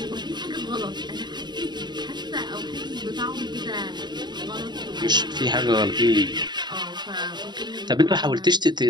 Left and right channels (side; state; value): left; late; 0.21 ms